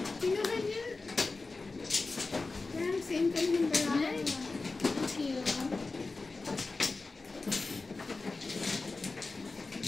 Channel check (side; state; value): right; quieter; 3.7 dB